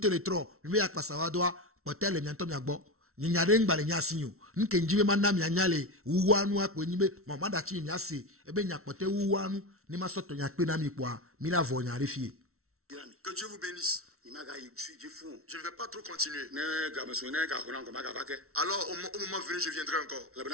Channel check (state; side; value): late; left; 0.63 ms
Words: mi me yakpasa wa doa potale nyanto mi agbo nyanyare ngbale nyasinyo nke njibe manna mi anyale uwanu akpo nyibe mama da chi mi ase ebe nyakpote uwanu ni ma soto nyakpe na mi kwa mi la vo nyare fie. Que Dieu vous bénisse. Je ne vais pas trop continuer. Alors au moment venu je viendrai encore.